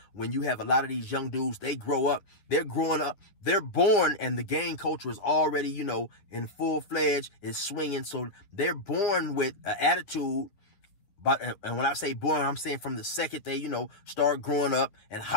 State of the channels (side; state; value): right; late; 10 ms